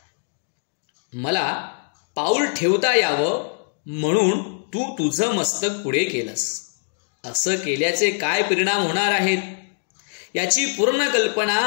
मला पाऊल ठेवता यावं म्हणून तू तुझं मस्तक पुढे केलंस. असं केल्याचे काय परिणाम होणार आहेत याची पूर्ण कल्पना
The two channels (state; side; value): silent; right; digital silence